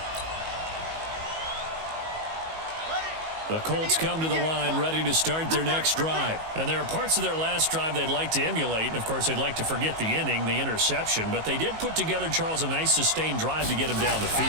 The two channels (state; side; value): late; left; 19 ms